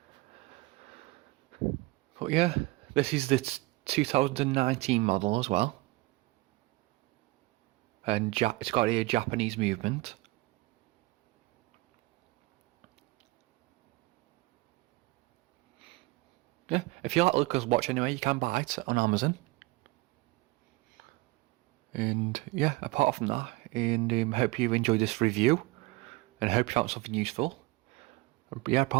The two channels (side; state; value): left; quieter; 21.6 dB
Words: But yeah, this is the 2019 model as well. And it's got a Japanese movement. Yeah, if you like to look at this watch anyway, you can buy it on Amazon. And yeah, apart from that, and hope you enjoyed this review, and hope you found something useful. But yeah,